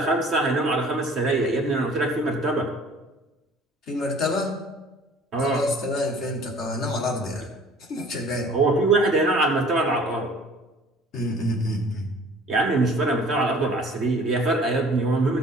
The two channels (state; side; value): normal; both; correlation 0.50